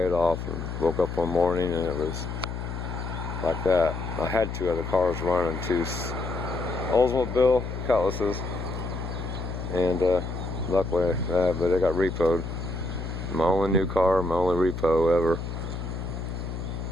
it off, and woke up one morning and it was like that. I had 2 other cars running, 2 Oldsmobile Cutlasses, and luckily, but they got repoed. My only new car, my only repo ever.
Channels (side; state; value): left; noise; hum, 6 dB below the sound